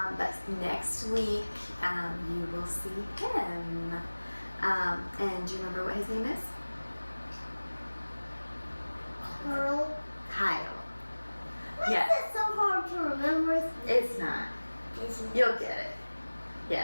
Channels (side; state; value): both; inverted; correlation -1.00